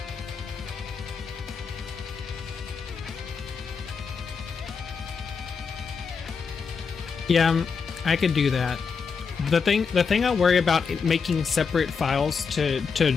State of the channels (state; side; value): quieter; right; 5.6 dB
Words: Yeah, I could do that. The thing I worry about making separate files to